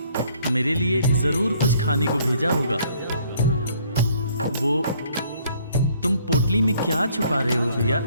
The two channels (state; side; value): inverted; both; correlation -0.63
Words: मेरे लिए जरूर कुछ खाने को भेजा होगा। वो तुम पोटली में क्या छुपा रहे हो भैया?